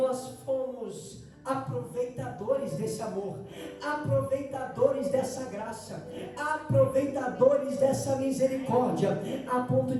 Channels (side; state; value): both; identical; correlation 1.00